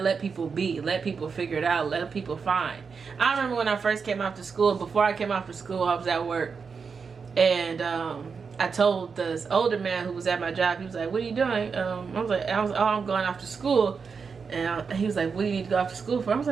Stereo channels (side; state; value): left; quieter; 5.5 dB